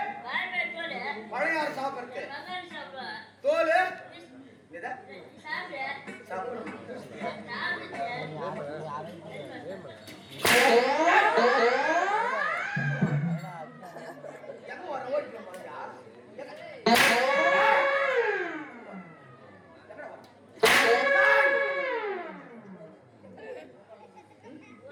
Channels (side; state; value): both; identical; correlation 1.00